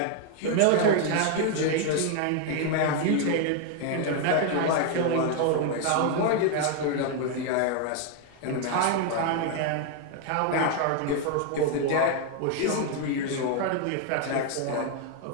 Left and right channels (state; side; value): different; both; correlation 0.00